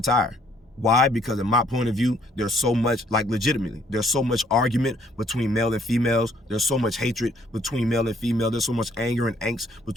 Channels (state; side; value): normal; both; correlation 0.64